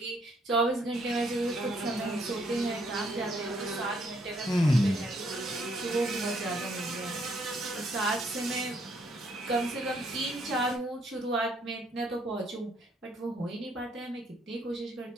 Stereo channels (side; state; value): both; normal; correlation 0.69